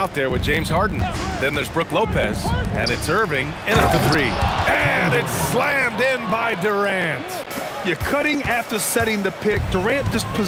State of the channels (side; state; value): both; identical; correlation 1.00